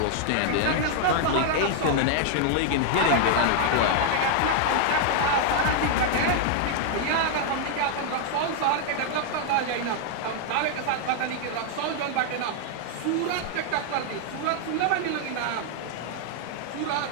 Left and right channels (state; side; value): different; both; correlation 0.00